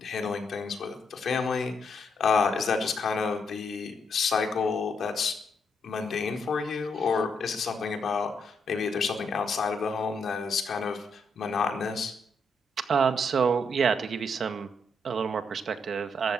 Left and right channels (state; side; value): normal; both; correlation 0.77